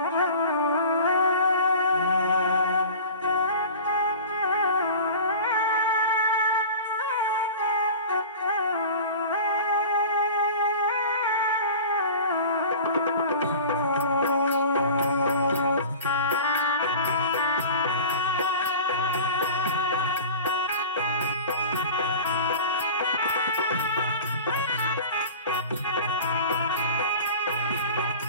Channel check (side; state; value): both; inverted; correlation -0.38